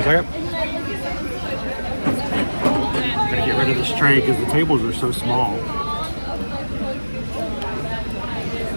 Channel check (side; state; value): both; inverted; correlation -1.00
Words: second. I'm gonna get rid of this tray because the tables are so small.